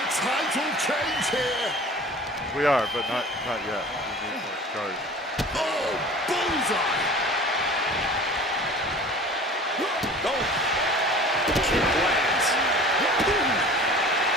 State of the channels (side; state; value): both; normal; correlation 0.43